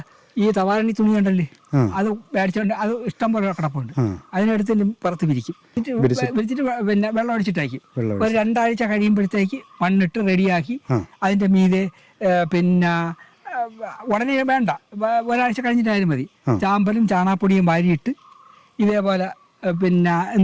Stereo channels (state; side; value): identical; both; correlation 1.00